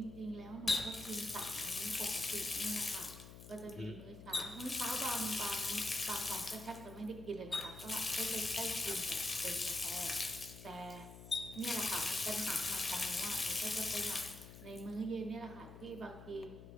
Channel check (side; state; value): left; noise; hum, 14 dB below the sound